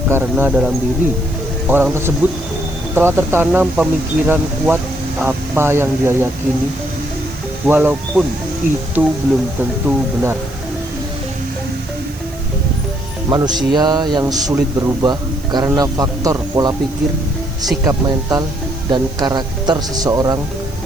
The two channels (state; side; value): noise; right; hiss, 22 dB below the sound